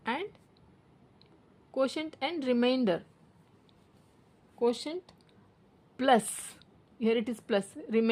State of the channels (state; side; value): identical; both; correlation 1.00